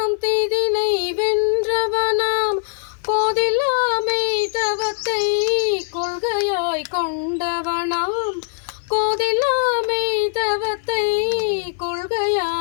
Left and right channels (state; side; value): silent; right; digital silence